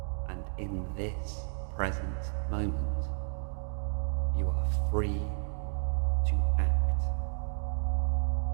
And in this present moment, you are free to act.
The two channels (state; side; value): silent; left; 57 dB below the other